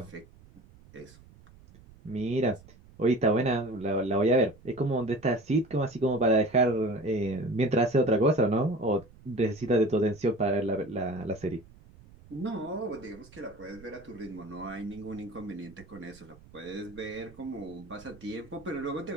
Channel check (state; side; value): noise; right; rumble, 23 dB below the sound